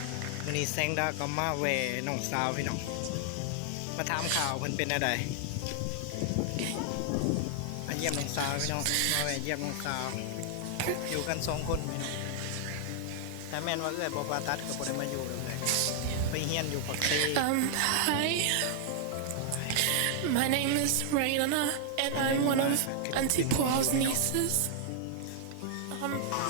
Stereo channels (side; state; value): both; different; correlation 0.00